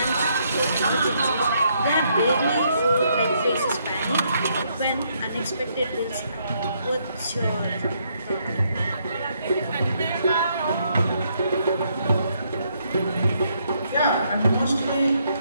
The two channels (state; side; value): inverted; both; correlation -0.73